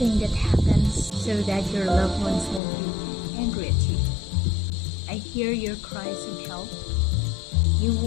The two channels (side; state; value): right; drops out; at 2.6 s